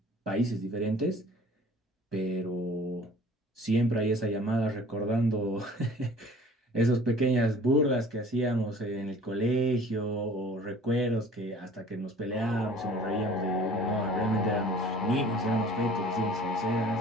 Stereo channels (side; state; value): both; normal; correlation 0.49